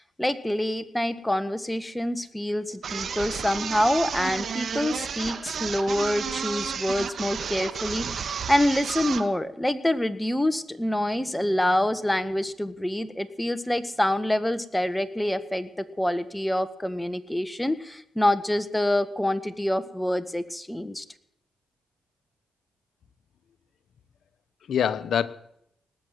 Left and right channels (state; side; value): normal; both; correlation 0.94